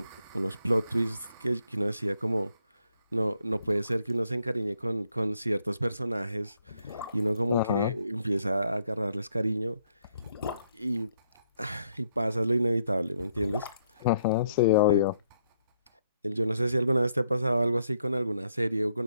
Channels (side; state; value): both; inverted; correlation -0.74